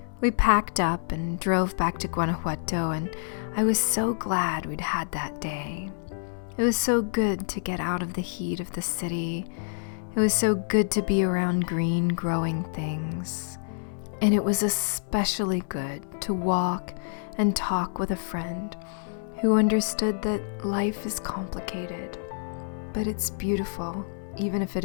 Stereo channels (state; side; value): silent; right; 60 dB below the other